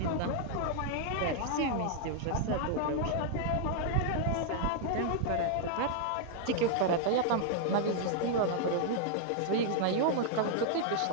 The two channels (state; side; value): different; both; correlation -0.01